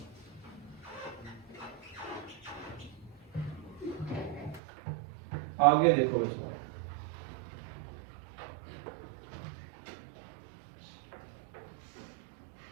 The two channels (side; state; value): left; drops out; at 4.6 s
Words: आगे देखो इसमें,